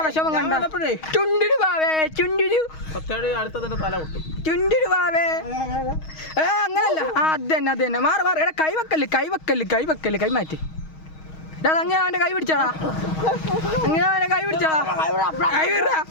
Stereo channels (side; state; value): right; late; 6.3 ms